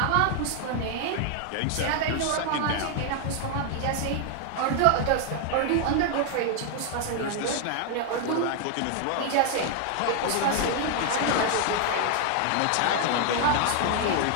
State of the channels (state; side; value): different; both; correlation 0.00